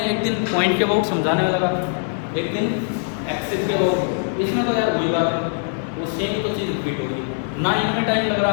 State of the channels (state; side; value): silent; right; 64 dB below the other